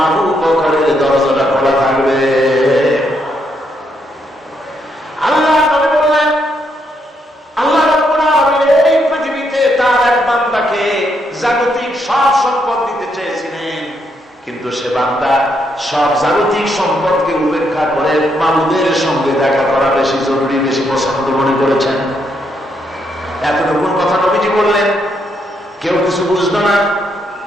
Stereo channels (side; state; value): both; normal; correlation 0.77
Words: আবু বকরের দরজাটা খোলা থাকবে। আল্লাহ নবী বললেন, আল্লাহ রাব্বুল আলামিন এই পৃথিবীতে তার এক বান্দাকে জাগতিক সব সম্পদ দিতে চেয়েছিলেন, কিন্তু সে বান্দা সব জাগতিক সম্পদকে উপেক্ষা করে মাবুদের সঙ্গে দেখা করা বেশি জরুরি, বেশি পছন্দ মনে করেছেন। এতটুকু কথা নবীজি বললেন, কেউ কিছু বুঝলো না।